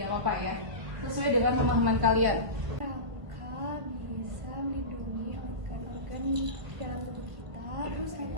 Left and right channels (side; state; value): left; late; 1.5 ms